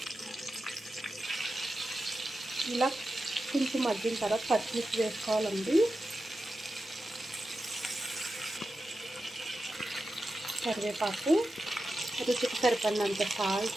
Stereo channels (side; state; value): both; normal; correlation 0.91